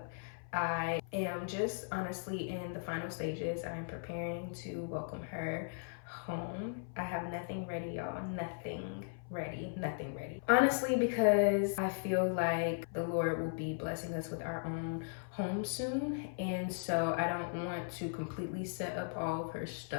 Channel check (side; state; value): right; silent; 53 dB below the other